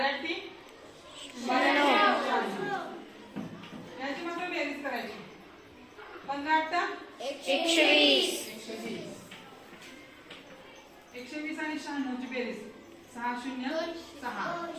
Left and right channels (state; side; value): identical; both; correlation 1.00